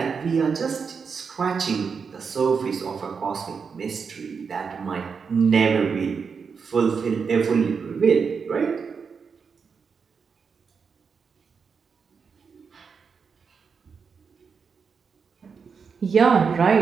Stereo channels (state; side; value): quieter; left; 5.8 dB